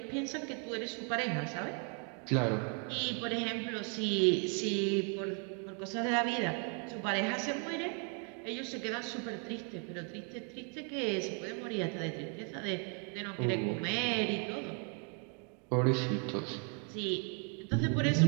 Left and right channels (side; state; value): left; quieter; 38.7 dB